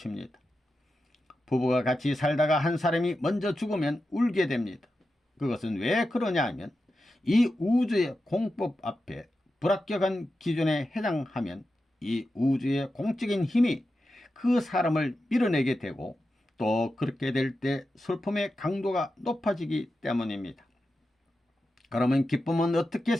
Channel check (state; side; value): normal; both; correlation 0.90